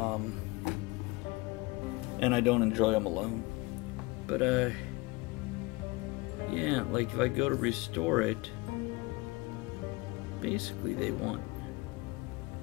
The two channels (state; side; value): quieter; right; 24.0 dB